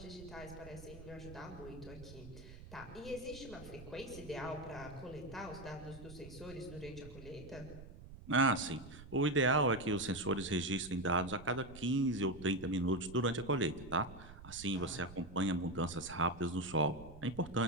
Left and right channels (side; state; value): right; noise; rumble, 15 dB below the sound